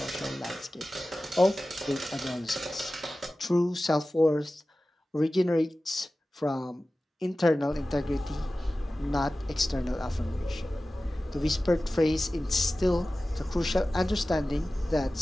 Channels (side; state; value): both; normal; correlation 0.96